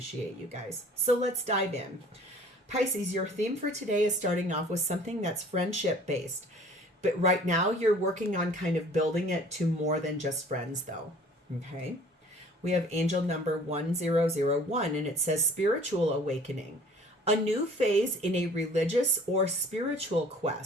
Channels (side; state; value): both; normal; correlation 0.49